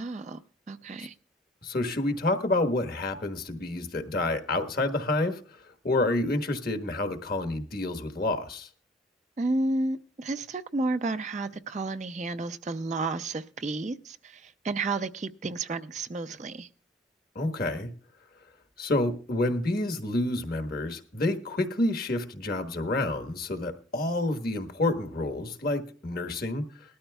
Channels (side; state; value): both; normal; correlation 0.51